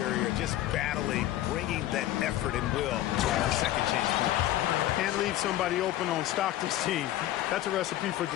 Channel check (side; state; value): right; quieter; 14.0 dB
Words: just battling, bringing that effort and will to second chance points. Can't leave somebody open on Stockton's team. That's a recipe for